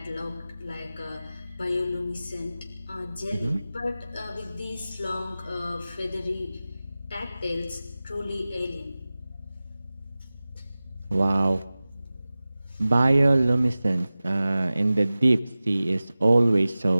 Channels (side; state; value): both; inverted; correlation -0.96